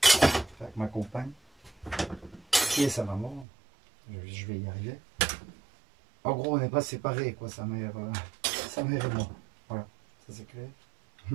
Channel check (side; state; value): left; drops out; at 3.5 s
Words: Enfin, avec ma compagne. Qui est sa maman. Je vais y arriver. En gros on n'est pas séparés quoi, sa mère et moi. Voilà, ça c'est clair.